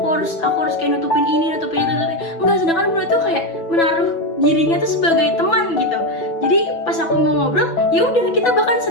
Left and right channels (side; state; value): right; late; 6.0 ms